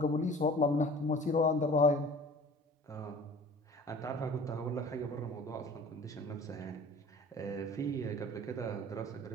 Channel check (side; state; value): both; normal; correlation 0.45